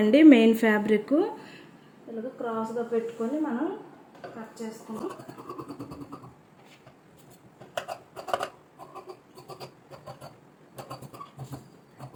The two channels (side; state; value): both; identical; correlation 1.00